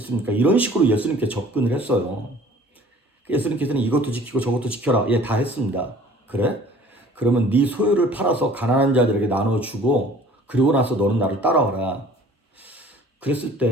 이런 식으로 예수님께 접근을 했어요. 예수님께서는 이것도 지키고 저것도 지켜라. 예, 다 했습니다. 그래? 그러면 네 소유를 팔아서 가난한 자들에게 나눠주고 그리고 나서 너는 나를 따라와라. 그랬을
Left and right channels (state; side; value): normal; both; correlation 0.51